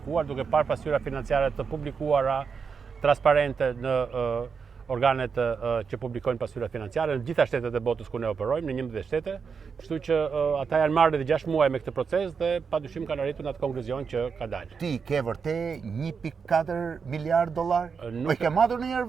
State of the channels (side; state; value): left; quieter; 5.8 dB